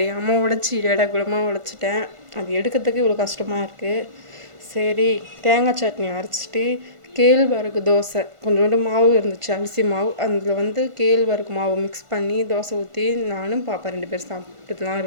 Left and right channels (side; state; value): left; late; 1.5 ms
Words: உடைச்சி இடகுலமாக உடைச்சிட்டேன். அது எடுக்கிறதுக்கு இவ்வளோ கஷ்டமாக இருக்குது. சரி, தேங்காய் சட்னி அரைச்சிட்டு கேழ்வரகு தோசை கொஞ்சோண்டு மாவு இருந்துச்சு, அரிசி மாவு. அதில் கேழ்வரகு மாவு மிக்ஸ் பண்ணி தோசை ஊற்றி நானும் பாப்பா 2 பேர் சாப்பிட்டுலாம்